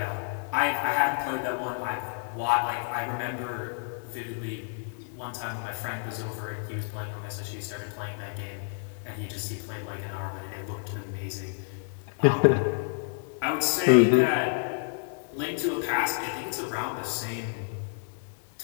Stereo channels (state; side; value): silent; right; 58 dB below the other